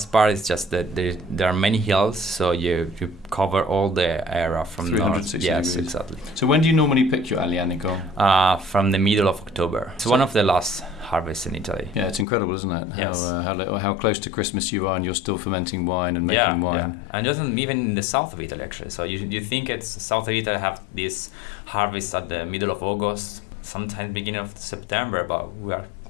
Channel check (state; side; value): drops out; right; at 12.2 s